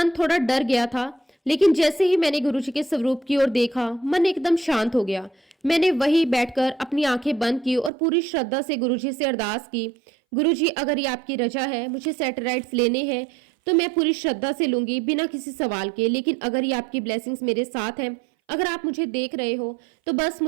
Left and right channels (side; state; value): left; drops out; at 7.9 s